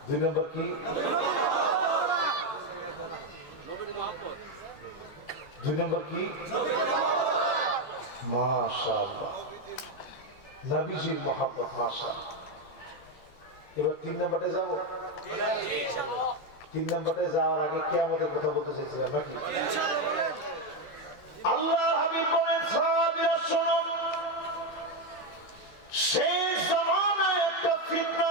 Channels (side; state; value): right; late; 13 ms